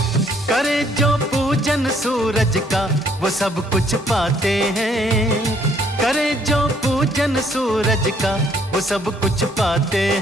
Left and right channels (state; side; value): normal; both; correlation 0.65